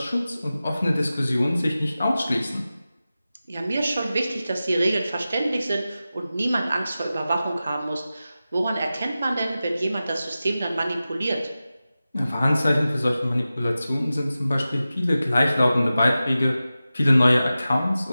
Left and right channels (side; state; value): both; inverted; correlation -0.94